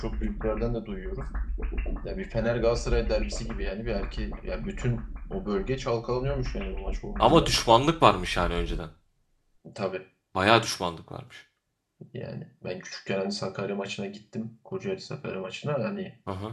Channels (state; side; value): identical; both; correlation 1.00